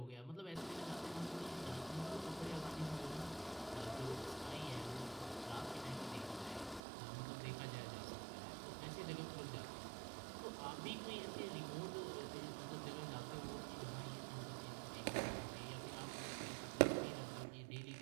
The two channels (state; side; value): drops out; left; at 6.8 s